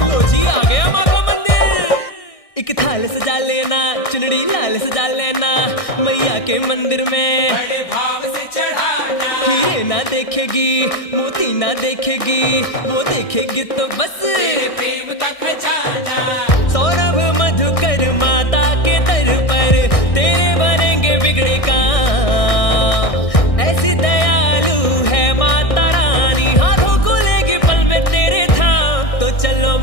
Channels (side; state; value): right; late; 1.6 ms